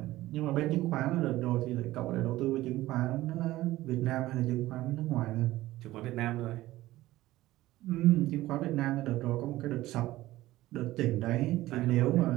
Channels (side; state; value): left; quieter; 16.6 dB